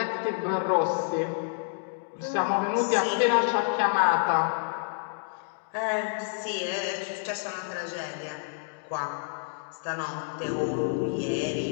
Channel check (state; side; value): silent; right; digital silence